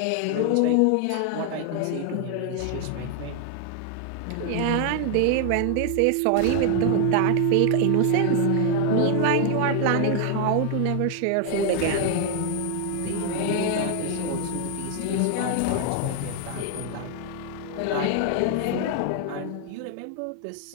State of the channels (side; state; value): both; different; correlation 0.00